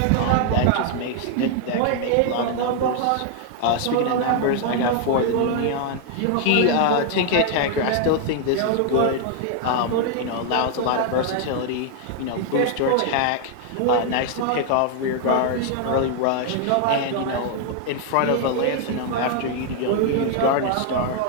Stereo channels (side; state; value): both; different; correlation 0.00